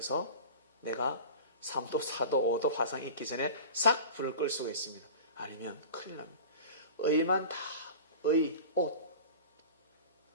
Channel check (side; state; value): both; inverted; correlation -0.36